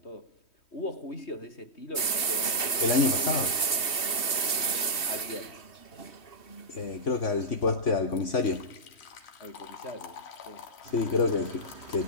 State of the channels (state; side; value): late; right; 2.7 ms